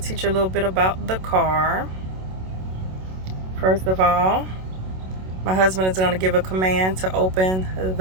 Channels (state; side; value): late; left; 27 ms